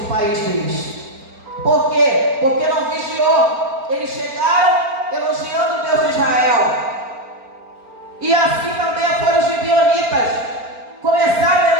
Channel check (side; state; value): left; late; 4.4 ms